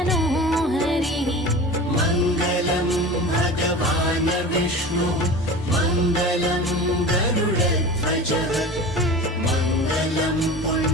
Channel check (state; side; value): normal; both; correlation 0.34